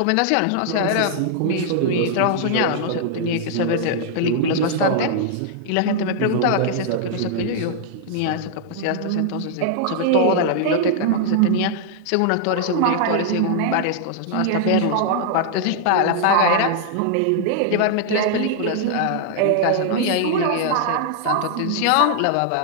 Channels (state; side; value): different; both; correlation -0.01